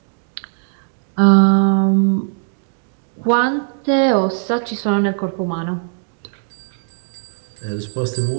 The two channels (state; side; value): silent; left; digital silence